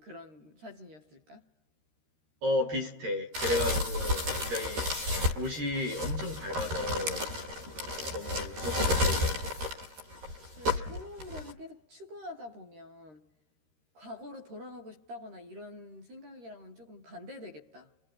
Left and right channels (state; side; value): late; left; 13 ms